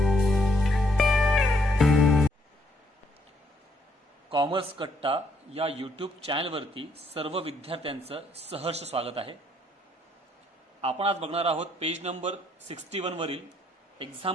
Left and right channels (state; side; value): normal; both; correlation 0.71